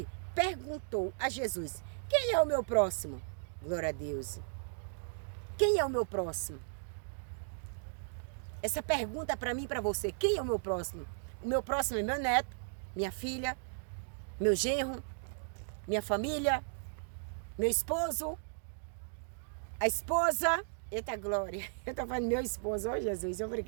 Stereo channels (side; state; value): left; silent; digital silence